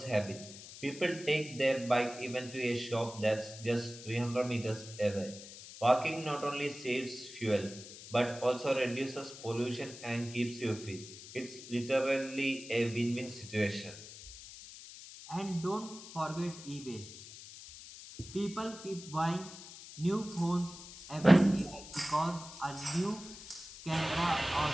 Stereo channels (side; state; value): left; noise; hiss, 15 dB below the sound